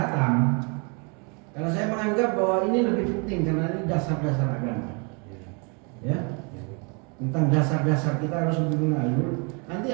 Karena saya menganggap bahwa ini lebih penting karena ini dasar-dasar agama. Ya. Tentang dasar-dasar kita harus lebih mengalir. Nanti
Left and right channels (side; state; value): left; quieter; 34.0 dB